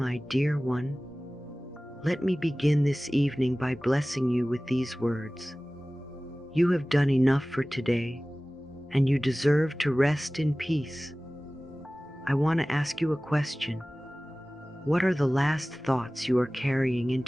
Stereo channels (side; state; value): both; normal; correlation 0.98